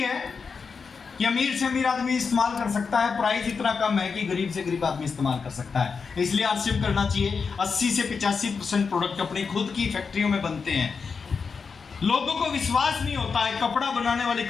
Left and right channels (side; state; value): right; quieter; 5.4 dB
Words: कि अमीर से अमीर आदमी इस्तेमाल कर सकता है, प्राइस इतना कम है कि गरीब से गरीब आदमी इस्तेमाल कर सकता है। इसलिए आरसीएम करना चाहिए। 80 से 85% प्रोडक्ट अपनी खुद की फैक्ट्रियों में बनते हैं। लोगों को विश्वास नहीं होता है कपड़ा बनाने वाली